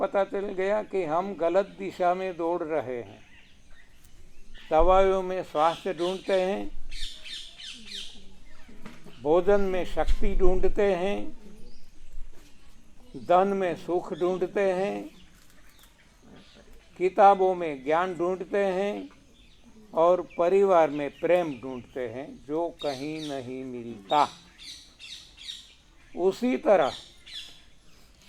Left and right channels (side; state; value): both; identical; correlation 1.00